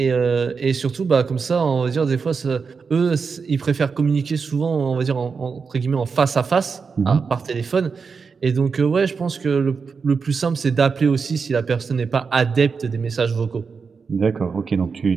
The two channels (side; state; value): left; quieter; 5.3 dB